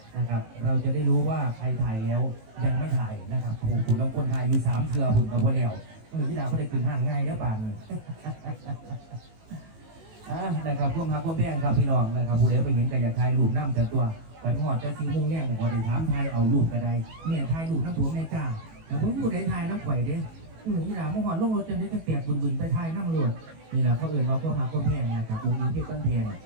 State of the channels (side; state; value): left; late; 18 ms